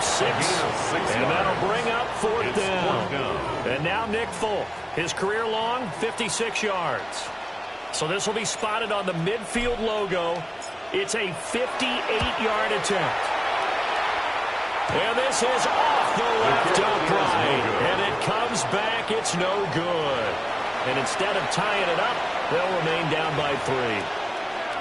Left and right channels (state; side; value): identical; both; correlation 1.00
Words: 6. And that'll bring up 4th down. And now Nick Folk. His career long, 56 yards. So this will be spotted on the midfield logo. It's a 58-yard attempt. And this is off the left upright. And it comes back. It's no good. And instead of tying it up, they'll remain down by 3.